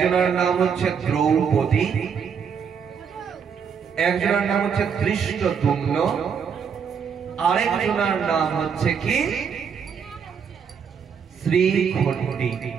নাম হচ্ছে দ্রৌপদী, একজনের নাম হচ্ছে ধৃষ্টদ্যুম্ন, আরেকজনের নাম হচ্ছে কি শ্রীখণ্ডী।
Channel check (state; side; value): quieter; left; 6.8 dB